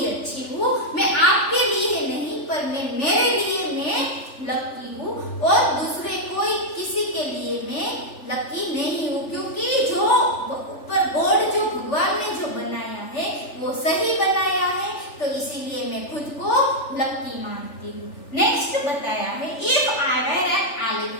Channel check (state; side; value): late; right; 3.4 ms